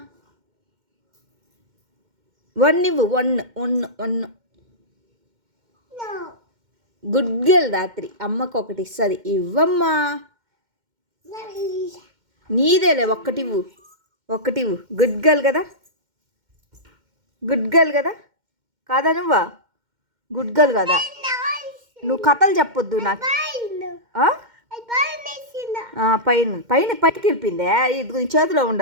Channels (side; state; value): left; late; 2.1 ms